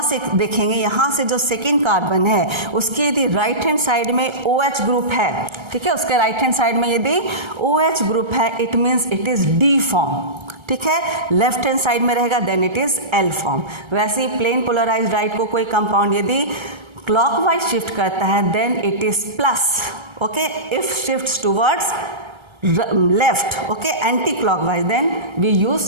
से देखेंगे, यहाँ से जो सेकेंड कार्बन है उसके यदि राइट हैंड साइड में OH ग्रुप है, ठीक है, उसके राइट हैंड साइड में यदि OH ग्रुप है it means it is D form. ठीक है, लेफ्ट हैंड साइड में रहेगा then it is L form. वैसे ही प्लेन पोलराइज्ड लाइट को कोई कंपाउंड यदि क्लॉकवाइज शिफ्ट करता है then it is plus. Okay, if shifts towards left, okay, anti clockwise then we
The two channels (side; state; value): left; late; 1.3 ms